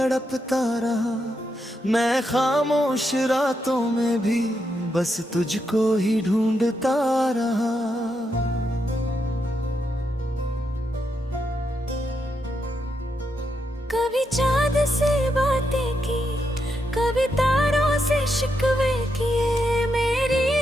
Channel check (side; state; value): both; normal; correlation 0.82